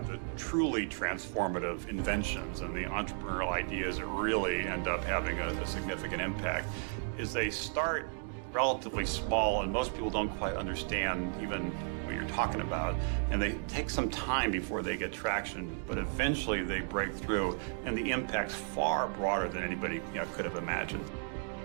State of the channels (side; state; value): left; silent; 55 dB below the other